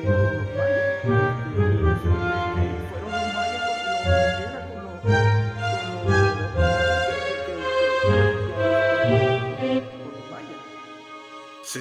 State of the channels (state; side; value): identical; both; correlation 1.00